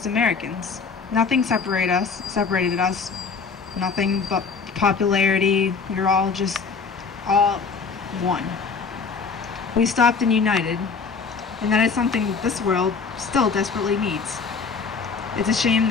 Americans. Nothing separated us, nothing but popularity. We were all just all one. We stopped and united, and that is something this world still desperately needs. It's a shame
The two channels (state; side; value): quieter; right; 5.1 dB